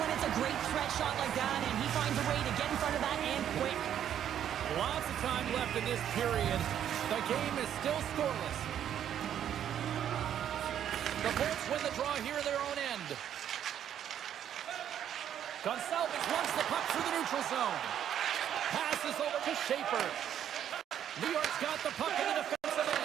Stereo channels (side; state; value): left; quieter; 10.0 dB